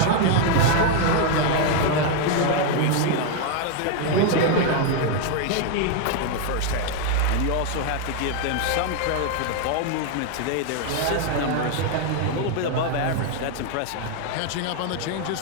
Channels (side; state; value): both; different; correlation 0.01